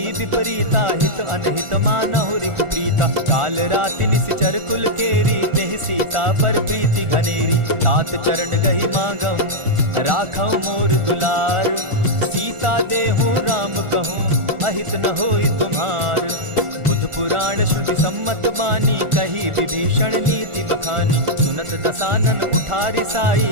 विपरीता, हित अनहित मानहु रिपु प्रीता। काल राति निशिचर कुल केरी, तेहि सीता पर प्रीति घनेरी। तात चरण गहि मांगऊं, राखऊं मोर दुलार। सीता देहूं राम कहूं, अहित न होई तुम्हार। बुध पुराण श्रुति सम्मत बानी, कही विभीषण नीति बखानी। सुनत दसानन उठारी साई,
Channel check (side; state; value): left; late; 1.4 ms